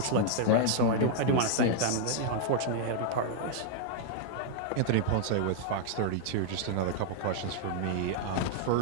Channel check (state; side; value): different; both; correlation 0.00